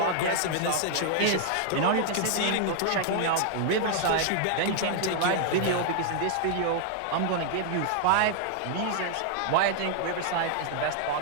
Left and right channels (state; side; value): different; both; correlation 0.00